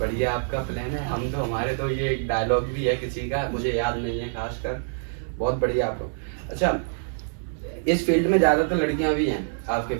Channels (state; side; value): silent; left; digital silence